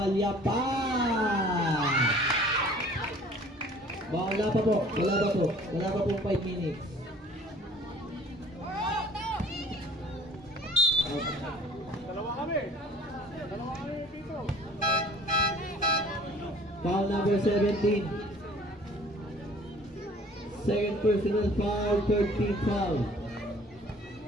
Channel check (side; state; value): both; normal; correlation 0.52